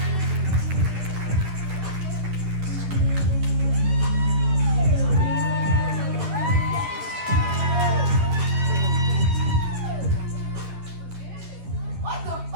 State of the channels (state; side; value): late; left; 11 ms